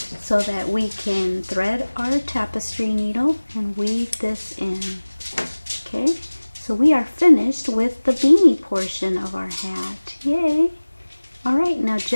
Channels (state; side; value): inverted; both; correlation -1.00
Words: that we can thread our tapestry needle and weave this in. Okay, so we are finished with the beanie portion of our hat. Yay! Alright, now